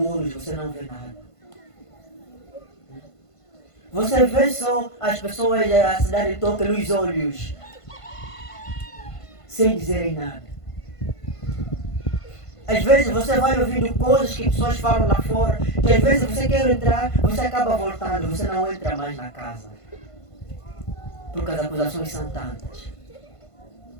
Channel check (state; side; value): late; right; 1.5 ms